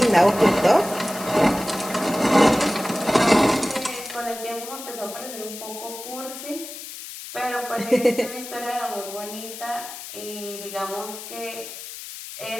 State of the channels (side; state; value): left; noise; hiss, 11 dB below the sound